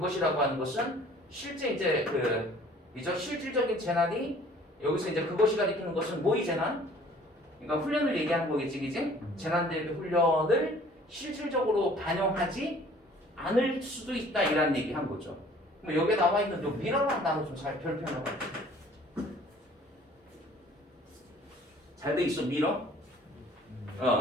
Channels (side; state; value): both; normal; correlation 0.53